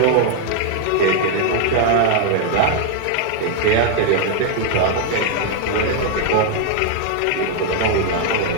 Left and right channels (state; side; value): different; both; correlation 0.00